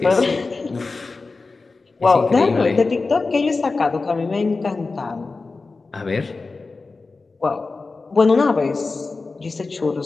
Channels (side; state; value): right; quieter; 3.9 dB